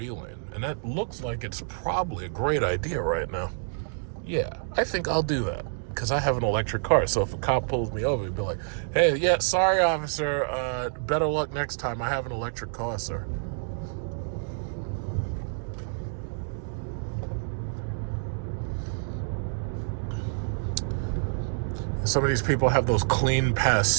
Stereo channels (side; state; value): left; silent; digital silence